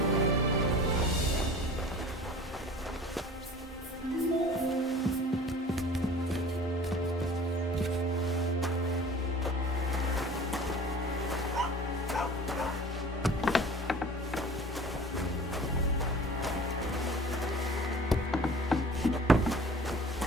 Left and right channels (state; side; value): normal; both; correlation 0.44